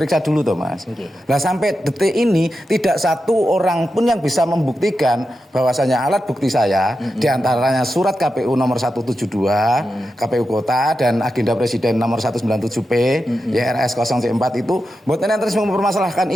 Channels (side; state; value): both; normal; correlation 0.89